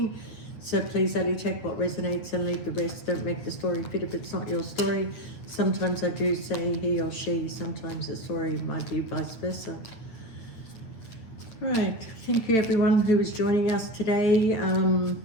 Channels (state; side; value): late; right; 8.8 ms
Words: So please only take what resonates and leave the rest. Don't make the story fit if it's not your story. Sometimes I do say he or she, sometimes the story might be vice versa. Right, thank you everyone who is joining us today.